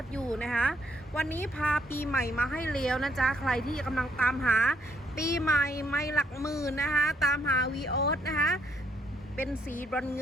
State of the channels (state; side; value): normal; both; correlation 0.72